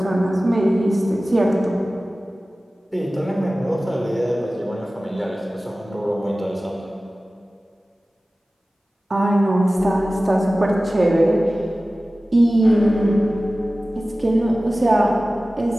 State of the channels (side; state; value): both; normal; correlation 0.96